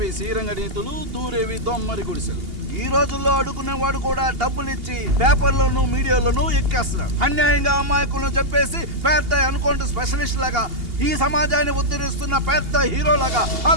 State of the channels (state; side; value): late; left; 2.8 ms